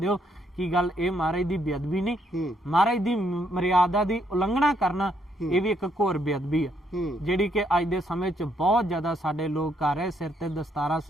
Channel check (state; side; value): normal; both; correlation 0.73